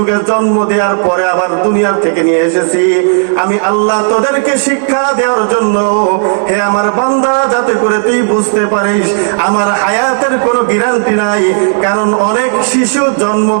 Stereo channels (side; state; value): left; silent; digital silence